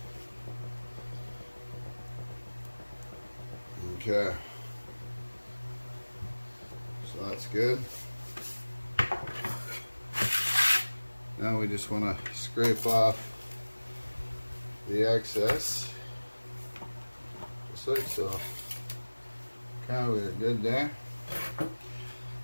Okay, so that's good. Now we just want to scrape off the excess, just like so. Okay, we're good there.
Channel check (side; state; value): both; inverted; correlation -1.00